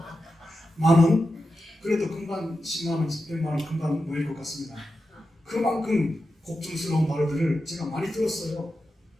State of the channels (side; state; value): both; normal; correlation 0.90